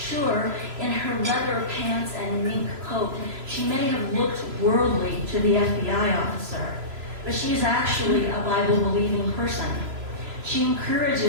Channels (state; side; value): late; left; 3.0 ms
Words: in her leather pants and mink coat, she may have looked worldly to the FBI officer, but she's actually a Bible-believing person. She